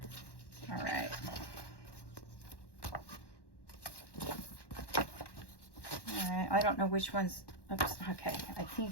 All right. All right, I don't know which one's, oops, okay. I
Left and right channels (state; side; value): late; right; 1.1 ms